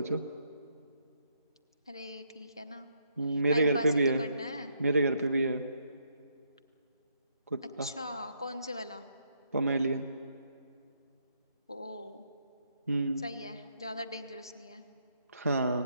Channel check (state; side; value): inverted; both; correlation -0.74